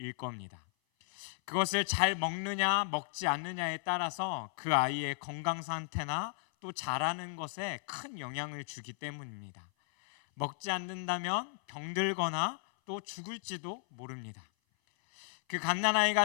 겁니다. 그것을 잘 먹느냐 먹지 않느냐에 따라서 그 아이의 건강 상태나 또 자라는 것에 큰 영향을 주기 때문입니다. 먹지 않는다면 병들거나 또 죽을지도 모릅니다. 그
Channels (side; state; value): right; silent; 55 dB below the other